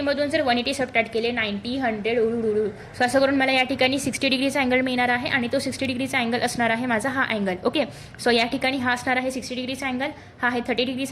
जर 180 सबट्रॅक्ट केले 90, 100 उडू. सो असं करून मला या ठिकाणी 60 डिग्रीचा अँगल मिळणार आहे आणि तो 60 डिग्रीचा अँगल असणार आहे माझा हा अँगल. ओके, सो या ठिकाणी हा असणार आहे 60 डिग्रीचा अँगल, हा आहे 30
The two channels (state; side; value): identical; both; correlation 1.00